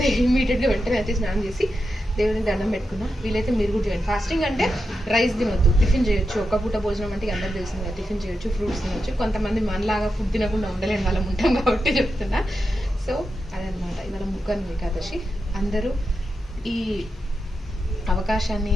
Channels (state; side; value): normal; both; correlation 0.88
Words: ఇమీడియట్గా వెంటనే అయితే స్నానం చేసి దేవుని దండం పెట్టుకున్నా. వీలైతే మీరు కూడా చేయండి. ఫాస్టింగ్ అంటే రైస్ తినొద్దు, టిఫిన్ చేయొచ్చు. ఒక్క పూట భోజనం అంటే అందరూ తెలిసింది కదా, టిఫిన్ చేయొచ్చు, ఫ్రూట్స్ తినొచ్చు. కొంతమంది మనలాగా ఫుడ్ తినకుండా ఉండలేని వాళ్ళం ఉంటాం కాబట్టి చెప్తున్నా. సో అదనమాట ఇవాళ ముక్కన్ను ఏకాదశి. అందరూ ఈ